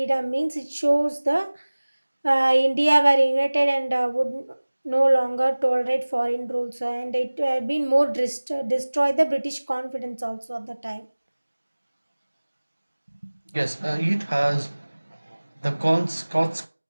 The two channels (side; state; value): both; inverted; correlation -1.00